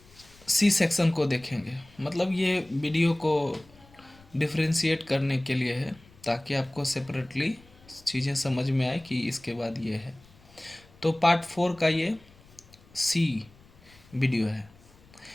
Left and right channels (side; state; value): left; noise; rumble, 26 dB below the sound